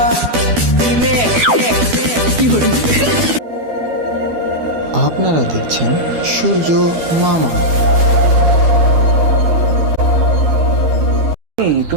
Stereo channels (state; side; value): late; left; 12 ms